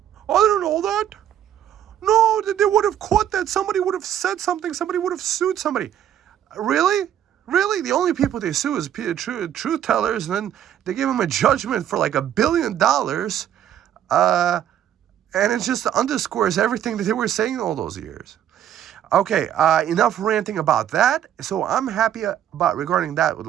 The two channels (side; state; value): left; quieter; 10.6 dB